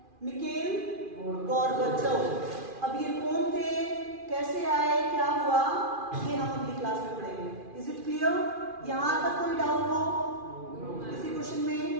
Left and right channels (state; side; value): late; left; 2.4 ms